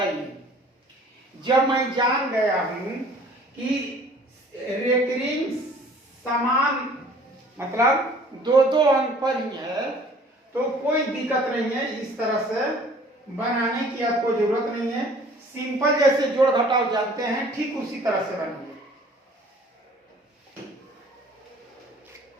जब मैं जान गया हूं कि रेकरिंग समान मतलब दो दो अंक पर ही है, तो कोई दिक्कत नहीं है, इस तरह से बनाने की आपको जरूरत नहीं है। सिंपल जैसे जोड़ घटाव जानते हैं ठीक उसी तरह से बनाइए।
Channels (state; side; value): normal; both; correlation 0.52